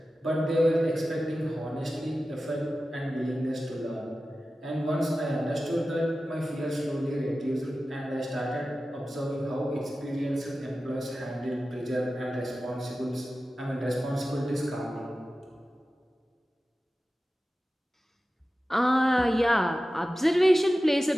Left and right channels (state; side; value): normal; both; correlation 0.94